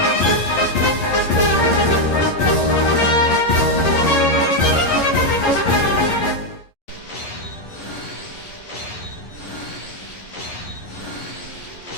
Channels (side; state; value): right; late; 11 ms